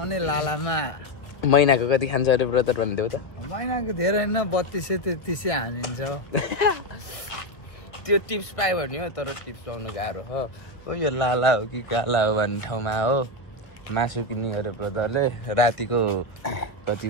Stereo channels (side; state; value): right; late; 1.2 ms